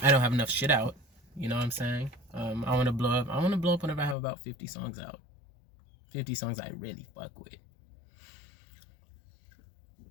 I don't have enough shit out. You know what I'm saying? I want to blow up whenever I have about 50 songs out. 50 songs I really fuck with.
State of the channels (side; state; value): right; drops out; at 4.2 s